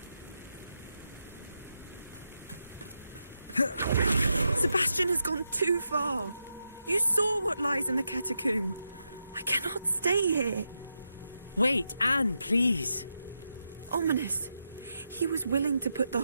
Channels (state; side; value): inverted; both; correlation -0.86